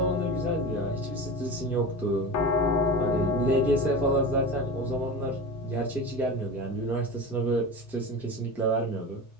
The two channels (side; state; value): both; normal; correlation 0.29